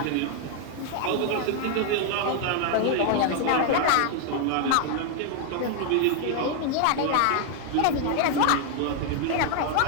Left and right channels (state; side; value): different; both; correlation 0.00